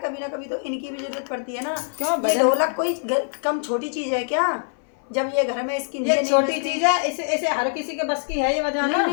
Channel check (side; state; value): right; silent; 60 dB below the other